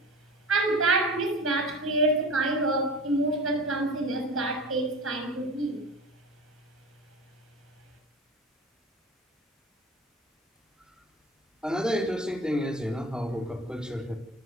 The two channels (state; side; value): normal; both; correlation 0.35